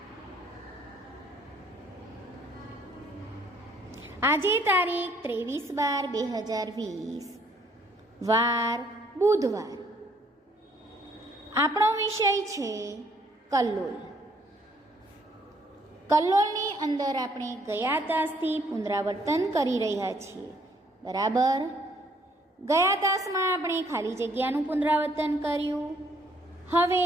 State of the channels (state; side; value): normal; both; correlation 0.65